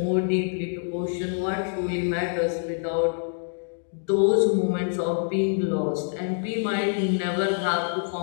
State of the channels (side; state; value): right; silent; digital silence